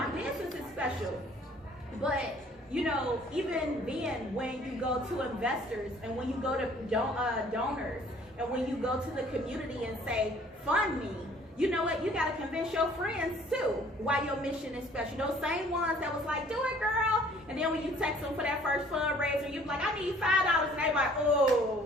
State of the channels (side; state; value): both; normal; correlation 0.56